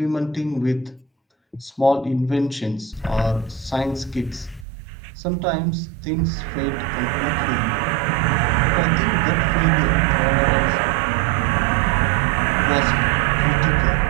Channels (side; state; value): left; drops out; at 4.7 s